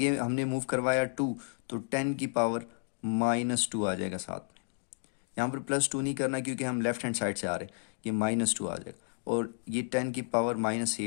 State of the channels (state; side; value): silent; right; digital silence